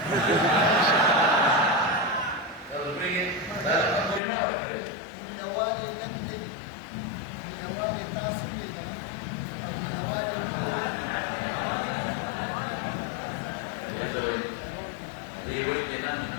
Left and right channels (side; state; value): right; drops out; at 4.2 s